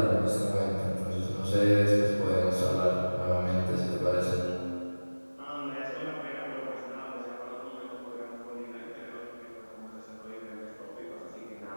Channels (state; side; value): inverted; both; correlation -1.00